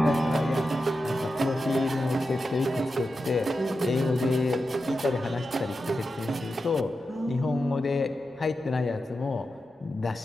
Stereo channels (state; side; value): normal; both; correlation 0.90